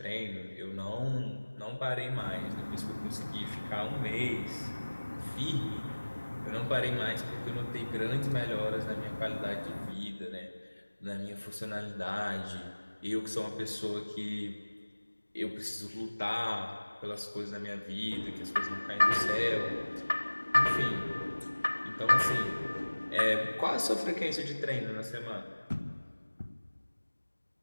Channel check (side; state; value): both; inverted; correlation -1.00